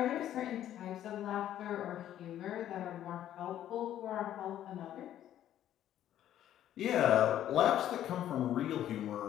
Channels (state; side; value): quieter; right; 11.6 dB